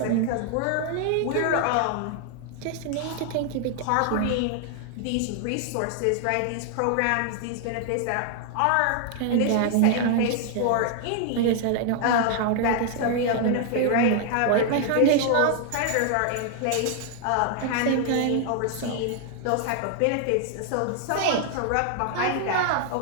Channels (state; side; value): different; both; correlation 0.00